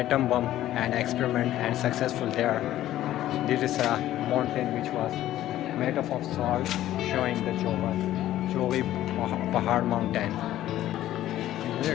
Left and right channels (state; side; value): quieter; right; 13.5 dB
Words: bomb and experiment and successful there. This is a mountain which was made up of salt, showing the Chowai Pothohar mountain.